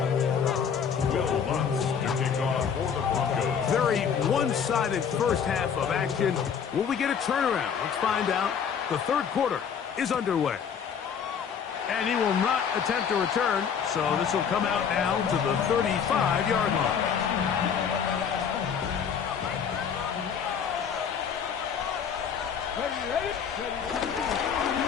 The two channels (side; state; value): right; quieter; 7.2 dB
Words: me a lot. Will Lutz to kick off for the Broncos. Very one-sided first half of action. Will we get a turnaround? Let's find out. The third quarter is underway. And he will not attempt to return, so this will come out now to the 35-yard line.